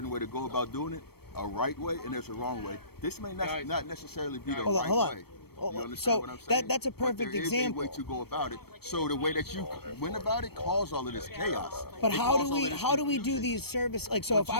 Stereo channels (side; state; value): right; late; 0.96 ms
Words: way to go about doing it, a right way, and there's a wrong way. This may not necessarily be the Hold on, right hold on. way. You understand so what I'm saying? that's a perfect but there example. is a way to go about it. So the way that you went about it caused all of this chaos. But It how caused do all we of this do confusion. these service like so? If